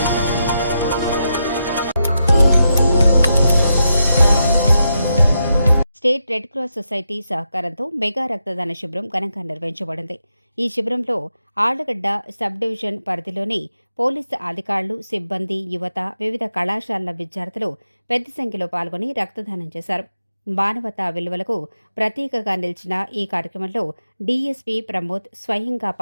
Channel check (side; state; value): both; inverted; correlation -0.85